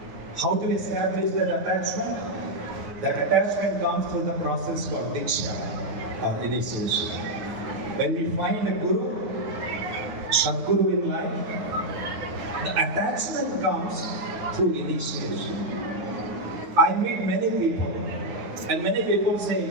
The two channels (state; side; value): late; left; 9.6 ms